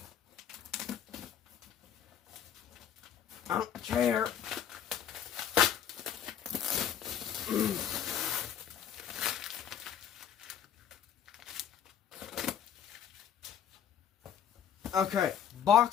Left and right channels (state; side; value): quieter; right; 9.1 dB